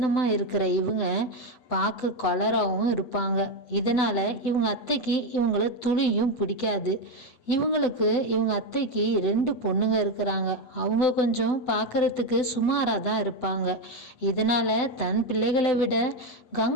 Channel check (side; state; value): right; late; 8.0 ms